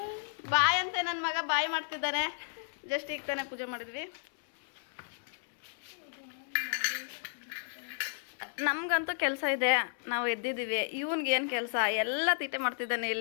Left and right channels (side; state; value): right; silent; 56 dB below the other